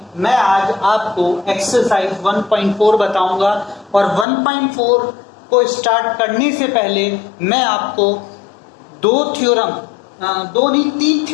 मैं आज आपको एक्सरसाइज 1.4 बताऊंगा। और 1.4 को स्टार्ट करने से पहले मैं आपको दो नहीं तीन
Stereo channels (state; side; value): drops out; right; at 4.2 s